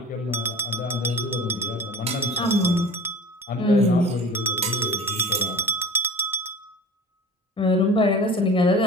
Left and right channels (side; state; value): both; normal; correlation 0.39